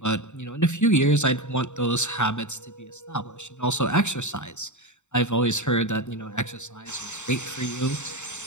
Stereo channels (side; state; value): right; late; 0.84 ms